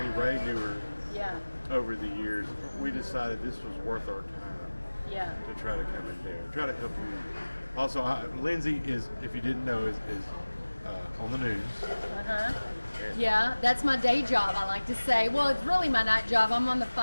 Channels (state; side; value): inverted; both; correlation -1.00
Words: Ray knew her yeah, over the years, we decided this was worth our time yeah. to try to come in there, try to help you. Also, Lindsay is, if you didn't know, is on the news. Yeah, that's my day job, I like to say. Well, it's really my night job. I'm on the